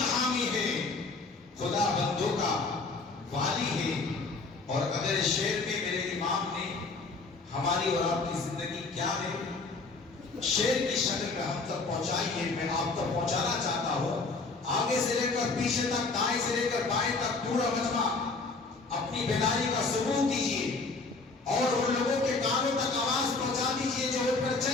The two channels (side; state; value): right; quieter; 3.9 dB